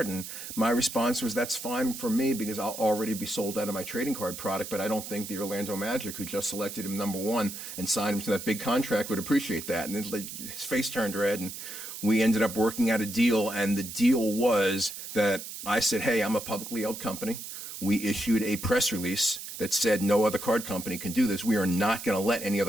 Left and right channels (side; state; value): right; noise; hiss, 10 dB below the sound